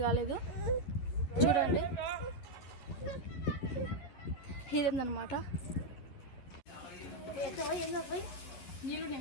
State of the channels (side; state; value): right; late; 11 ms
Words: కాలేదు. చూడండి ఇదేందనమాట. నీళ్ళు